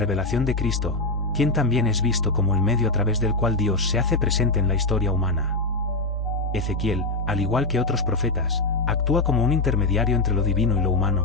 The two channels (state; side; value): quieter; right; 3.0 dB